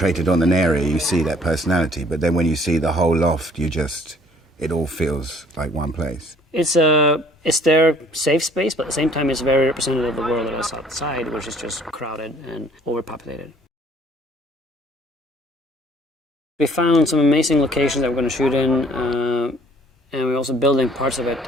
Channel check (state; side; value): normal; both; correlation 0.58